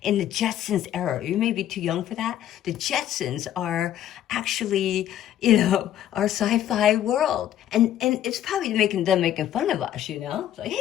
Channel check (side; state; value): right; quieter; 11.5 dB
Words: in the Jetsons era. You may be too young for that. The Jetsons are actually, you know, our sci-fi world. And it's probably making fun of us, you know? It's like,